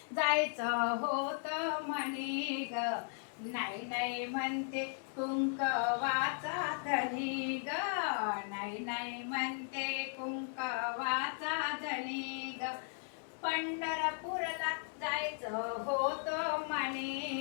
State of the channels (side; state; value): right; silent; 53 dB below the other